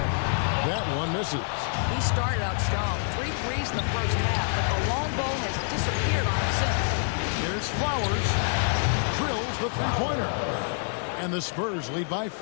That one misses. He started out strong. 3 threes in the first half, but the long ball has disappeared on him since. Here's Flowers. Drills the three-pointer. And the Spurs lead by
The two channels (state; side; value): silent; right; digital silence